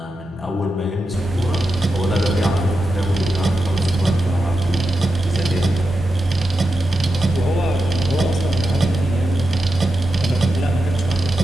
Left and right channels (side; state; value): both; normal; correlation 0.89